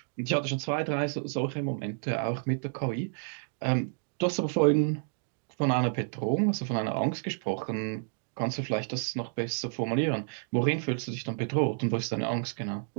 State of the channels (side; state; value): left; silent; digital silence